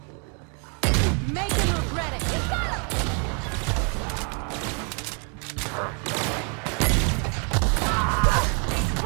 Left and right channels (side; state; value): left; quieter; 38.7 dB